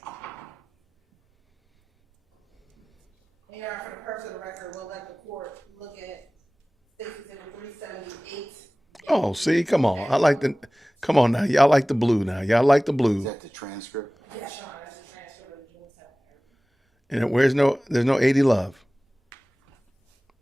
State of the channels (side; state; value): both; normal; correlation 0.98